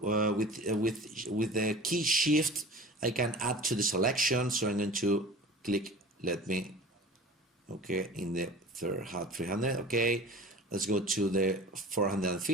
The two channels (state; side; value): normal; both; correlation 0.40